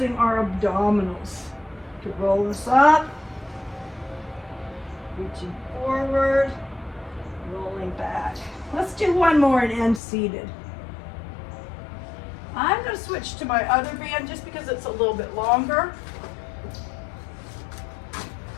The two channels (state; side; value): drops out; right; at 10.0 s